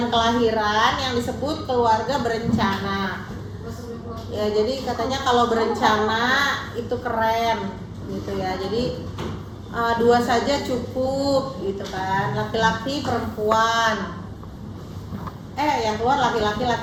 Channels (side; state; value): both; identical; correlation 1.00